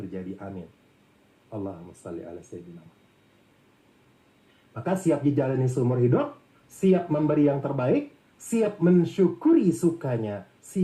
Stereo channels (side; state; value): both; identical; correlation 1.00